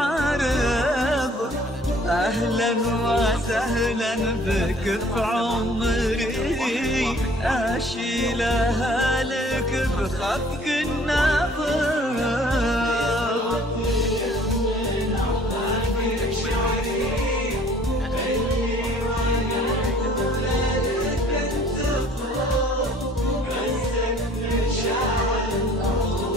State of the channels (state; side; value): normal; both; correlation 0.55